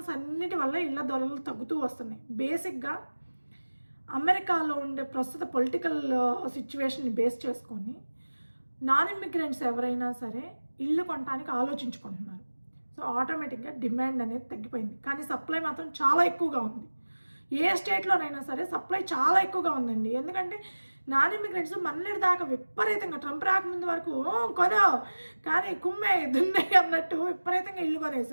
అన్నిటి వల్ల ఇళ్ళ ధరలు తగ్గుతూ వస్తున్నాయి. బేసిక్గా అమెరికాలో ఉండే ప్రస్తుత పొలిటికల్ సిచ్యువేషన్ని బేస్ చేసుకొని నాన్ ఇమ్మిగ్రెంట్స్ ఎవరైనా సరే ఇల్లు కొనడానికి ఆలోచించుకుంటున్నారు. సో ఆటోమేటిక్గా డిమాండ్ అనేది తగ్గిపోయింది, కానీ సప్లై మాత్రం చాలా ఎక్కువగా ఉంది. ఏ స్టేట్లోనైనా సరే సప్లై చాలా ఎక్కువగా ఉందండి. ఎందుకంటే నాన్ ఇమిగ్రెంట్స్ మన్నెడి దాకా విపరీతంగా ట్రంప్ రాకముందు వరకు కొనో కానీ కుమ్మే దున్నే అన్నట్టు విపరీతంగా ఇల్లు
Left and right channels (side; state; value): both; inverted; correlation -1.00